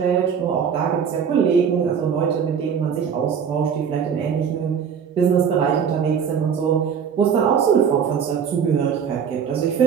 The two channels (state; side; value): quieter; left; 7.3 dB